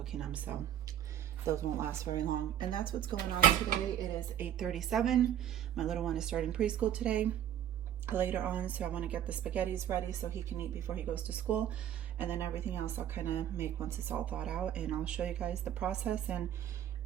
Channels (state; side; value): quieter; left; 10.6 dB